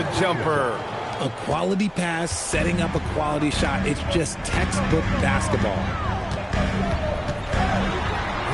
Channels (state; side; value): identical; both; correlation 1.00